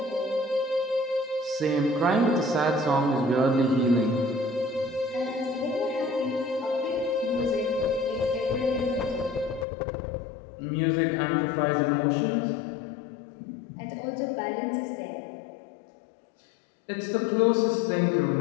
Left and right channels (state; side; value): drops out; right; at 9.7 s